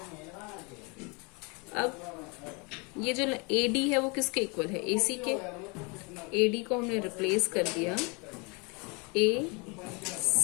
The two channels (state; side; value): quieter; right; 30.5 dB